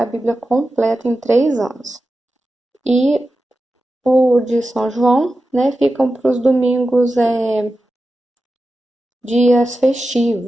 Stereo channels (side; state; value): both; normal; correlation 0.92